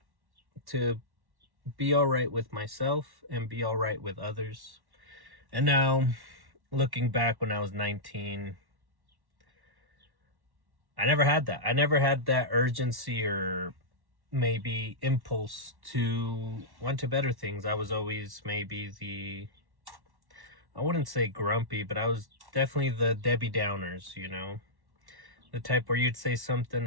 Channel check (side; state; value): left; late; 1.1 ms